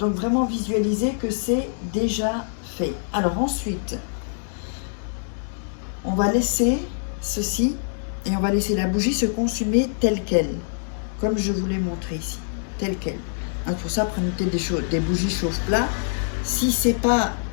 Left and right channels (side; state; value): right; silent; digital silence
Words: vraiment visualiser que c'est déjà fait. Alors ensuite, on va laisser ceci et on va laisser la bougie se consumer telle qu'elle, comme je vous l'ai montré ici, telle qu'elle. Donc pour ça, prenez peut-être des bougies chauffe-plat. Si c'est pas,